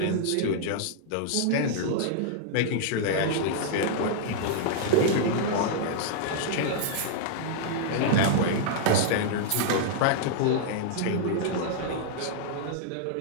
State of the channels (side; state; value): both; different; correlation -0.01